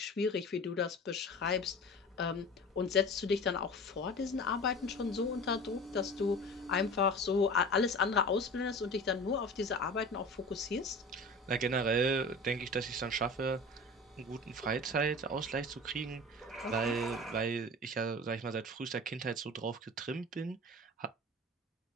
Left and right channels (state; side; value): normal; both; correlation 0.37